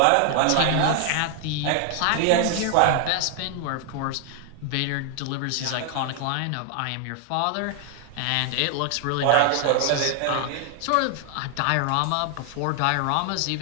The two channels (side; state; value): both; different; correlation 0.00